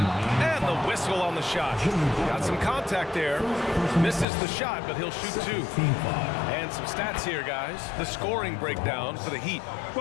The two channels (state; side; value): drops out; right; at 4.2 s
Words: the whistle on the shot. Got some contact there. Misses the shot, but he'll shoot 2. And some stats here, guys. The scoring breakdown for the Heat.